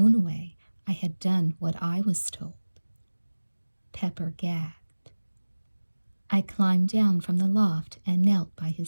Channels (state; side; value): inverted; both; correlation -1.00